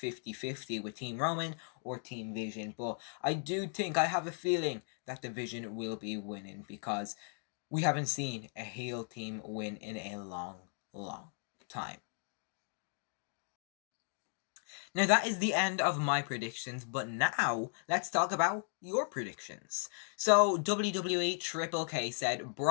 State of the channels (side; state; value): right; silent; 54 dB below the other